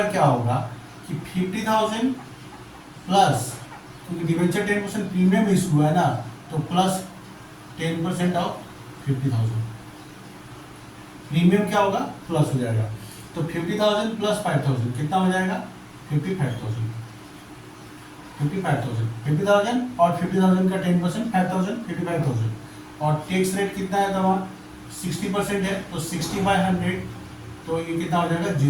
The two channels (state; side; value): identical; both; correlation 1.00